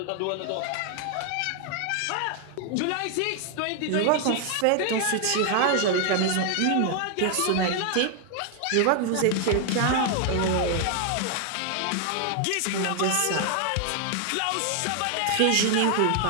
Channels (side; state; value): both; different; correlation 0.00